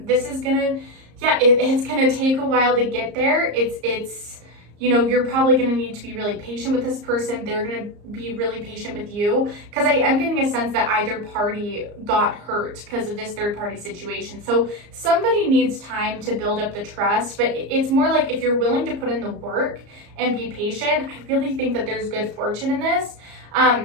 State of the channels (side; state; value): left; late; 34 ms